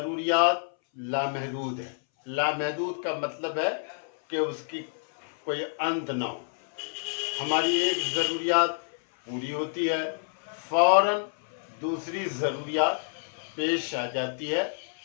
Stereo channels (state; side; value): silent; right; 59 dB below the other